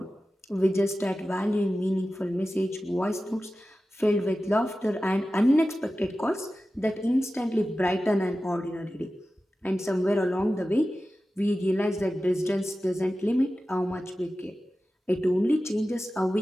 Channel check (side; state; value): both; normal; correlation 0.94